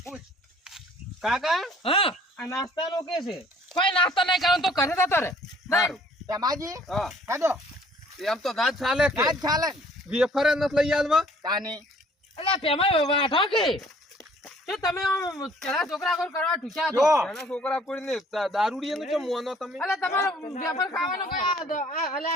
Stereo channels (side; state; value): both; normal; correlation 0.57